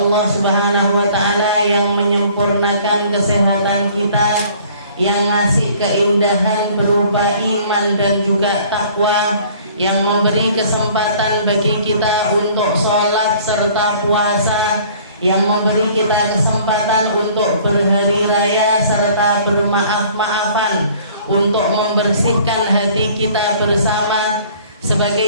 Subhanahu wa ta'ala yang menyempurnakan kesehatan kita, yang ngasih keindahan berupa iman dan juga takwa, yang memberi kesempatan bagi kita untuk sholat serta puasa, yang memberi kita kesempatan untuk berhari raya serta bermaaf-maafan, untuk membersihkan hati kita bersama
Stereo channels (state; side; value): inverted; both; correlation -0.53